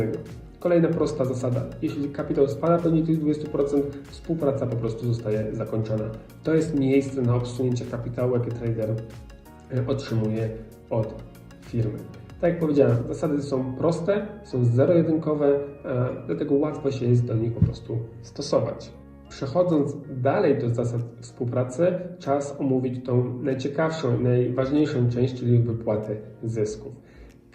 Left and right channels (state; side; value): identical; both; correlation 1.00